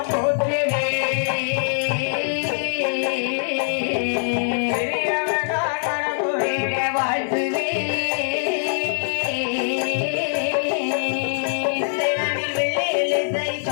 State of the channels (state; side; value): silent; right; 58 dB below the other